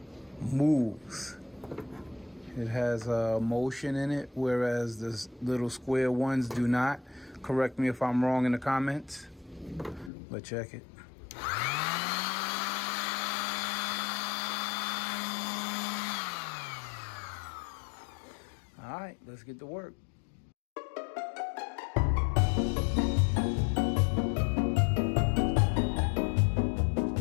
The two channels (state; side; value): drops out; right; at 10.1 s